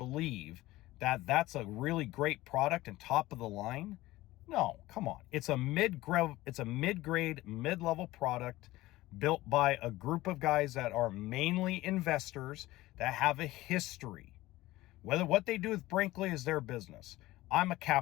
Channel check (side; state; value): right; quieter; 17.8 dB